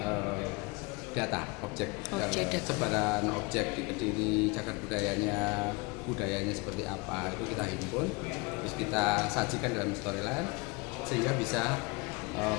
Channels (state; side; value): quieter; right; 27.5 dB